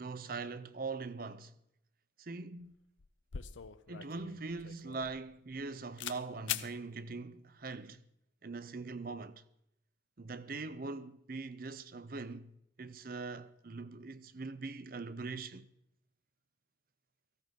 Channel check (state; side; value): normal; both; correlation 0.27